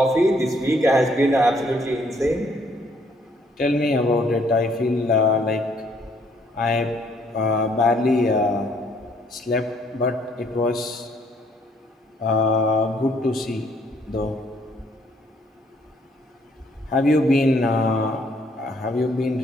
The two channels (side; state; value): both; normal; correlation 0.66